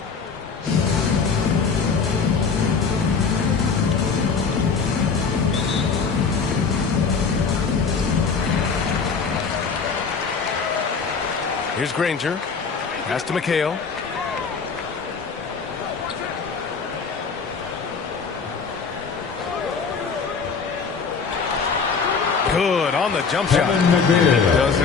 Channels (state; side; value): quieter; right; 5.4 dB